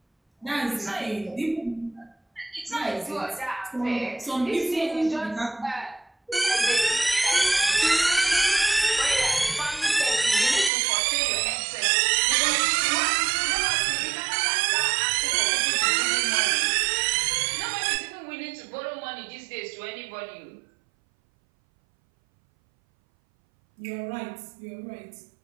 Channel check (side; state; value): left; drops out; at 10.7 s